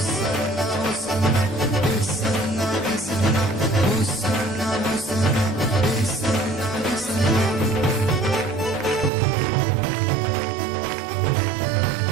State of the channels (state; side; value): drops out; left; at 9.1 s